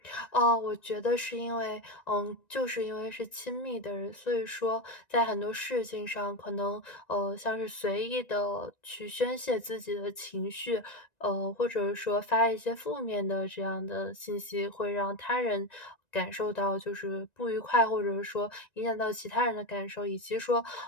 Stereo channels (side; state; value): right; late; 1.9 ms